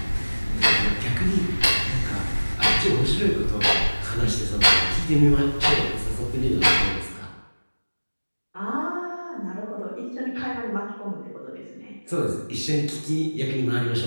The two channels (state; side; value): inverted; both; correlation -1.00